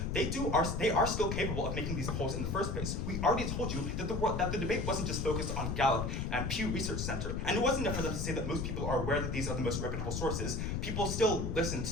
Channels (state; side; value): noise; left; rumble, 2 dB below the sound